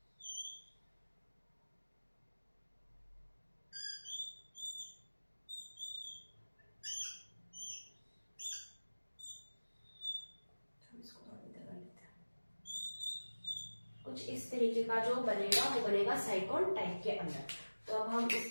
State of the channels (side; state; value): both; inverted; correlation -1.00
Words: कुछ इस तरीके का जो बनेगा वो बनेगा साइकोन टाइप के अंदर। तो अब हम